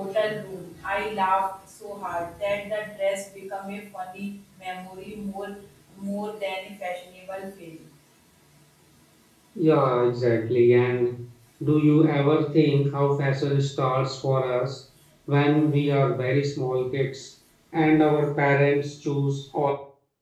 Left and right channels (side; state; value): both; identical; correlation 1.00